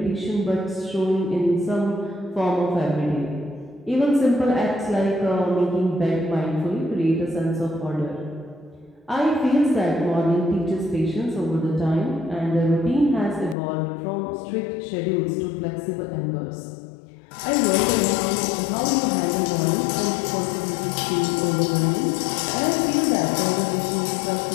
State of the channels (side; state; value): right; drops out; at 13.6 s